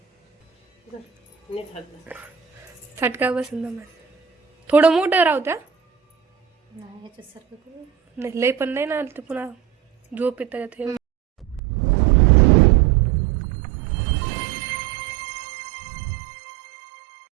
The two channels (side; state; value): left; drops out; at 11.6 s